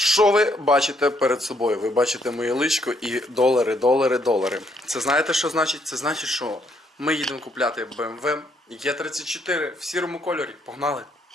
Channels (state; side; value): normal; both; correlation 0.71